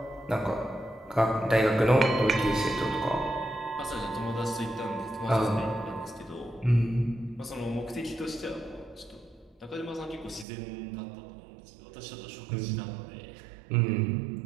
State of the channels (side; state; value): left; drops out; at 10.5 s